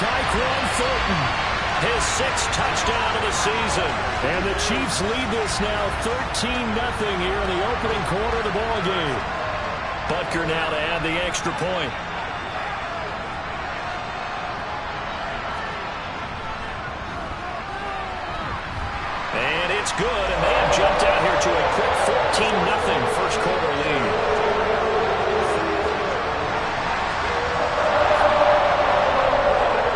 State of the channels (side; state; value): both; identical; correlation 1.00